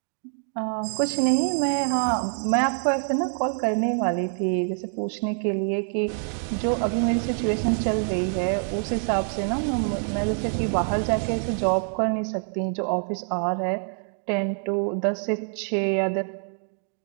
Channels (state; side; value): silent; left; 55 dB below the other